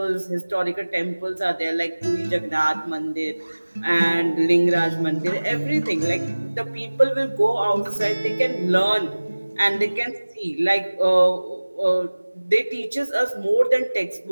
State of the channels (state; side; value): inverted; both; correlation -1.00